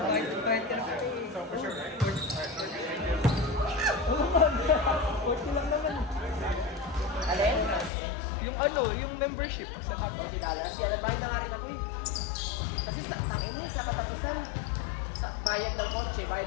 Alin? Yung ano, yung membership sa $40. Yan, nagbayad na nga rin ako eh. Kasi tangina sa katapusan, sa bayad ng kotse, bayad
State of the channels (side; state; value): right; drops out; at 7.9 s